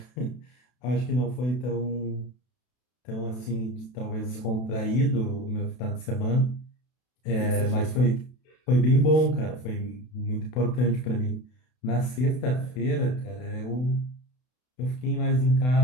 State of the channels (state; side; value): late; right; 32 ms